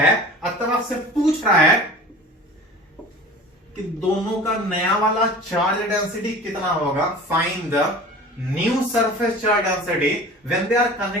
अतः आपसे पूछ रहा है कि दोनों का नया वाला चार्ज डेंसिटी कितना होगा। Find the new surface charge density when they are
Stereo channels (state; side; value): normal; both; correlation 0.40